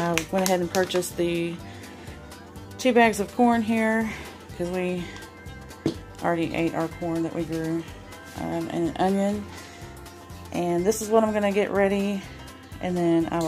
went ahead and purchased the 2 bags of corn here because we already ate our corn that we grew, and an onion. And this is what I'm going to get ready, and then I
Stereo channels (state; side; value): identical; both; correlation 1.00